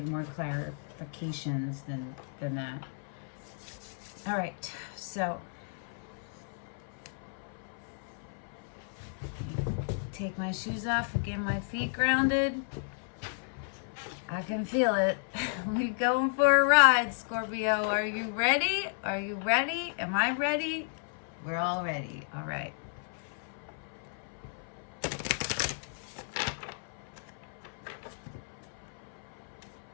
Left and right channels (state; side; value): silent; right; 56 dB below the other